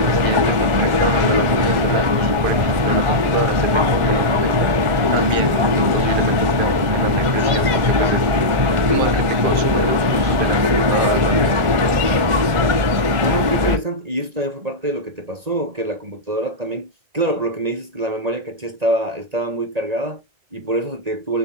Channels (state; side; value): late; left; 1.4 ms